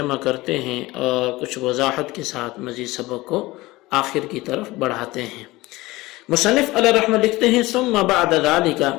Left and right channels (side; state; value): right; quieter; 19.8 dB